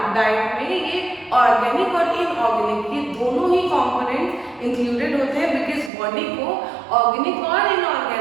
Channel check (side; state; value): left; drops out; at 5.9 s